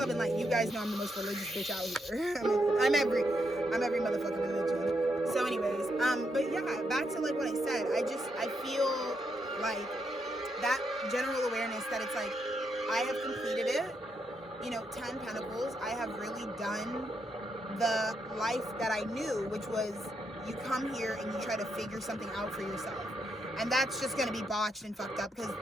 and light. You guys know I'm the most religious bitch out here. I'm every motherfucking religion. So anyways, but yeah, back to like what I said. I feel like that general awareness that it's like, I have completed it. 10 Pentacles. I have really done the life that I knew, which was you come here and you try to figure something out for yourself. And that's just going to be botched and fucked up because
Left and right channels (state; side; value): normal; both; correlation 0.80